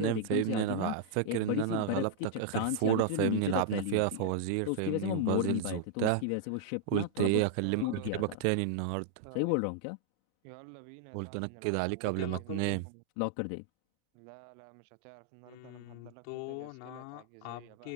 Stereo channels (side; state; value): both; different; correlation -0.01